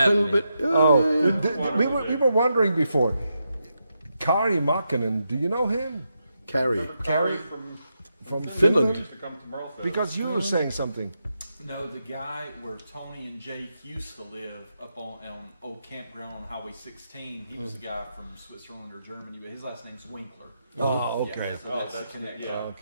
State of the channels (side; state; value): both; inverted; correlation -0.85